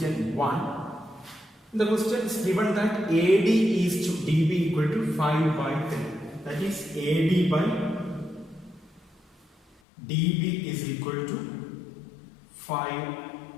1. The question is given that AD is to DB equal to 5/3. That is AD by DB is equal to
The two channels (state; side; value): drops out; right; at 9.8 s